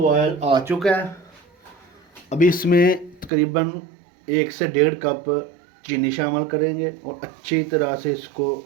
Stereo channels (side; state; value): left; drops out; at 3.3 s